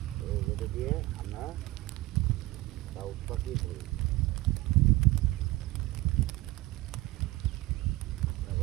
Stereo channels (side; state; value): left; quieter; 19.4 dB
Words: এই যেটা দিয়ে আমরা ডাউক পাখি ধরি।